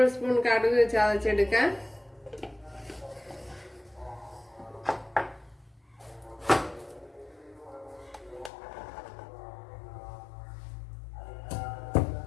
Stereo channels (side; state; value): right; drops out; at 8.5 s